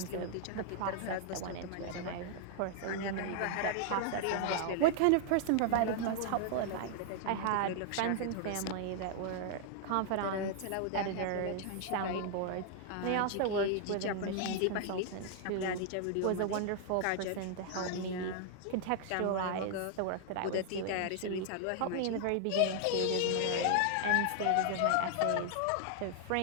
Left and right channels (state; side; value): different; both; correlation 0.00